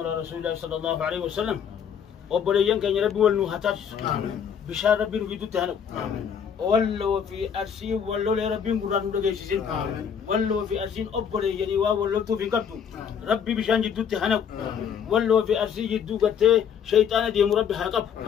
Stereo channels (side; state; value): right; quieter; 7.7 dB